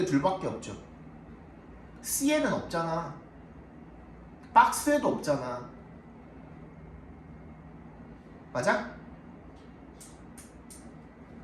둘밖에 없죠. C에는 없잖아. 박스에도 없잖아. 맞아?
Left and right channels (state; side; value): identical; both; correlation 1.00